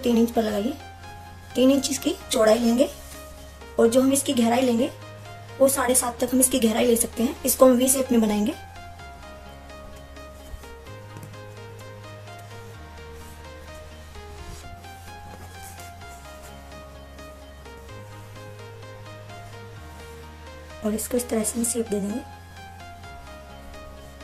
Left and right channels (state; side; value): identical; both; correlation 1.00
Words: इंच पर लगाइए। 3 इंच इसकी चौड़ाई लेंगे और जो हम इसकी गहराई लेंगे वो 7.5 तक हम इसकी गहराई ले सकते हैं। इसको हम वी शेप में बनाएंगे। और इसको इस तरह से शेप दे देंगे